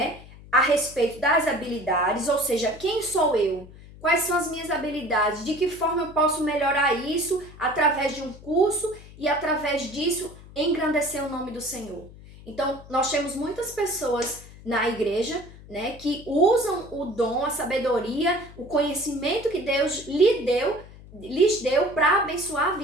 a respeito das habilidades, ou seja, quem sou eu? Quais são as minhas habilidades? De que forma eu posso melhorar isso através de um curso e através disso engrandecer o nome do Senhor? Então, nós temos muitas pessoas na igreja, né, que usam o dom, a sabedoria, o conhecimento que Deus lhes deu para abençoar a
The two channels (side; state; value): left; noise; hum, 19 dB below the sound